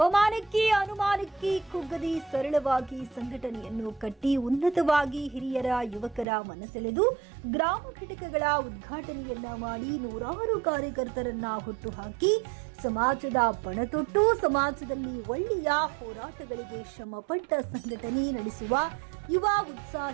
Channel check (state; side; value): drops out; left; at 6.2 s